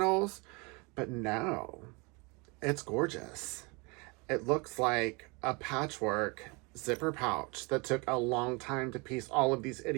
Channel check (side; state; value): left; quieter; 28.6 dB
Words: But no, it's gorgeous. it looks like a patchwork zipper pouch that took a long time to piece all of these